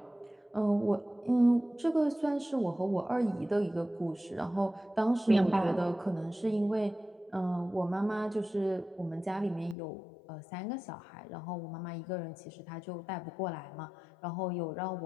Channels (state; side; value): drops out; right; at 9.8 s